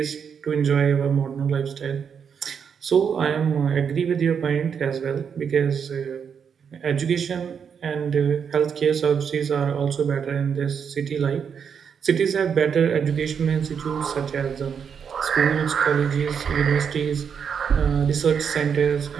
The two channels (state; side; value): quieter; left; 7.0 dB